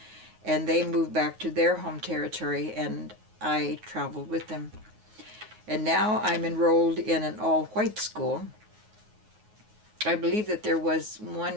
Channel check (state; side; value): late; left; 9.4 ms